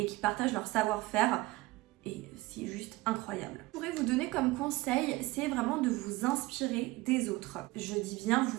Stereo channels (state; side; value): quieter; left; 20.2 dB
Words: qui partagent leur savoir-faire, et c'est juste incroyable. Je pourrais vous donner comme conseil, c'est vraiment de vous inspirer des autres. Je dis bien